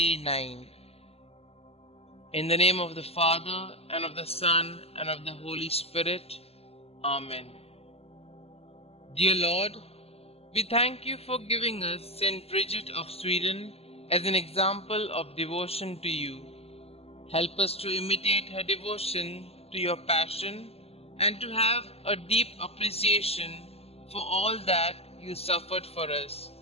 9. In the name of the Father, and of the Son, and of the Holy Spirit. Amen. Dear Lord, we thank you for giving us St Bridget of Sweden as an example of devotion to you. Help us to imitate her devotion to your passion and to have a deep appreciation for all that you suffered for us.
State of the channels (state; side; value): late; right; 0.29 ms